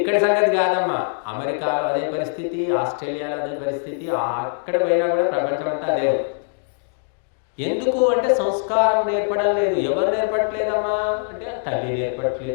సంగతి కాదమ్మా, అమెరికాలో అదే పరిస్థితి, ఆస్ట్రేలియాలో అదే పరిస్థితి, అక్కడ పోయినా కూడా ప్రపంచం అంతా అదే. ఎందుకు అంటే సంస్కారం నేర్పడం లేదు. ఎవరు నేర్పట్లేదమ్మా అంటే తల్లి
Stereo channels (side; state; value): right; silent; digital silence